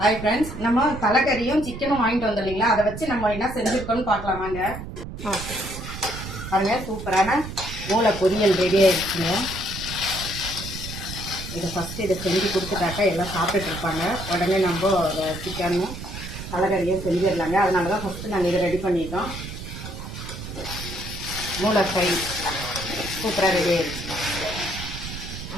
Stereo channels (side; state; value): right; noise; rumble, 9 dB below the sound